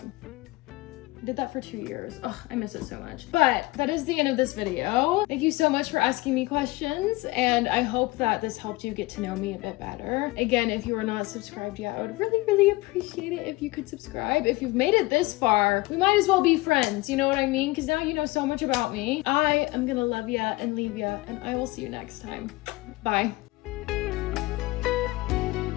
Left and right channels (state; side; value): quieter; right; 21.2 dB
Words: I did that for 2 years. Ugh, I miss it so much. But that is the end of this video. Thank you so much for asking me questions, and I hope that this helped you get to know me a bit better. Again, if you are not subscribed yet, I would really, really appreciate it if you could subscribe. If you've made it this far, we might as well be friends, you know what I mean? Because now you know so much about me. I am gonna love ya and leave ya, and I will see you next time. Bye.